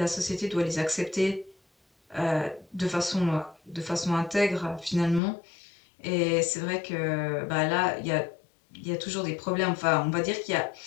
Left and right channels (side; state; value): right; drops out; at 5.2 s